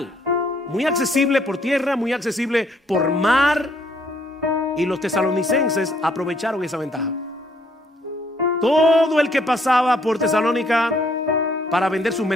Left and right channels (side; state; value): both; normal; correlation 0.67